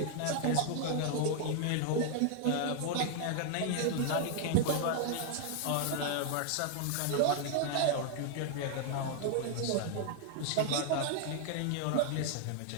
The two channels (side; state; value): both; different; correlation 0.00